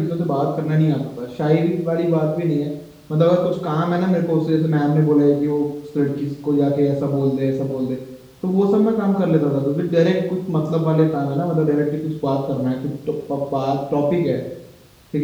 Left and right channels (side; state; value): both; identical; correlation 1.00